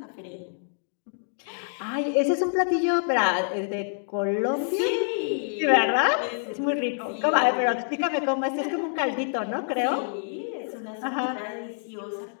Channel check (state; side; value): silent; right; digital silence